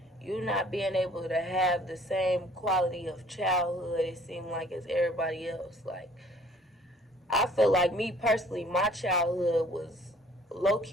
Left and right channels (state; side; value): normal; both; correlation 0.56